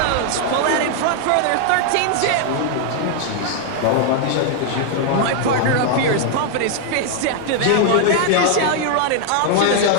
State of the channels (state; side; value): different; both; correlation 0.00